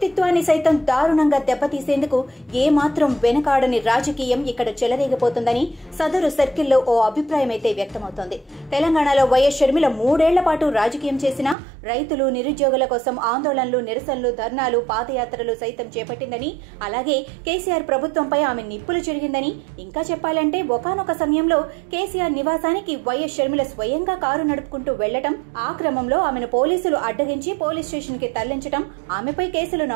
సైతం దారుణంగా దెబ్బతీసేందుకు ఏమాత్రం వెనకాడని రాజకీయం ఇక్కడ చెలరేగిపోతుందని సదరు సర్కిల్లో ఓ అభిప్రాయం అయితే వ్యక్తమవుతోంది. తెలంగాణలో వైఎస్ షర్మిల 3 ఏళ్ల పాటు రాజకీయం చేసినా రైతులు, నిరుద్యోగుల కోసం ఆందోళనలు, నిరసనలు, ధర్నాలు, పాదయాత్రలు సైతం చేపట్టిందని, అలాగే కేసీఆర్ ప్రభుత్వంపై ఆమె నిప్పులు చెరిగిందని, ఇంకా చెప్పాలంటే ఒకానొక సమయంలో కేసీఆర్ నివాసానికి వైఎస్ షర్మిల స్వయంగా కారు నడుపుకుంటూ వెళ్లటం, ఆ క్రమంలో ఆమెను పోలీసులు అడ్డగించి పోలీస్ స్టేషన్ కి తరలించడం, ఆమెపై కేసులు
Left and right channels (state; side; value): drops out; left; at 11.6 s